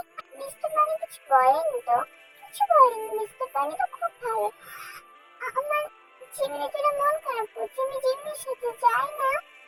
মিস্টার বানি কিছু বলেনি তো। কিছু বলেনি, মিস্টার বানি তো খুব ভালো। আমার জিমিনের জন্য মন খারাপ করছে, আমি জিমিনের সাথে যাই না।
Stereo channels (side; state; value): both; identical; correlation 1.00